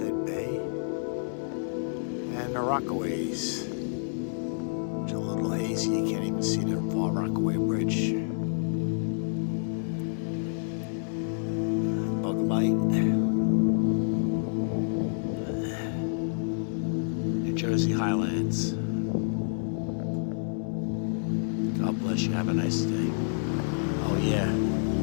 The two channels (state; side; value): silent; right; digital silence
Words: Bay. And the Rockaways. It's a little hazy, you can't even see the Far Rockaway Bridge. Bug Light. New Jersey Highlands. God bless you, have a nice day. Oh yeah,